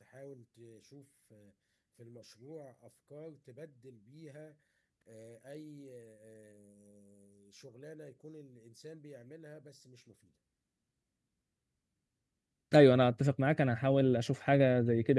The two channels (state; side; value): identical; both; correlation 1.00